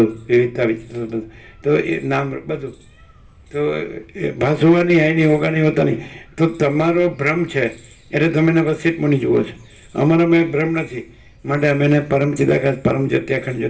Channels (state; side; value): identical; both; correlation 1.00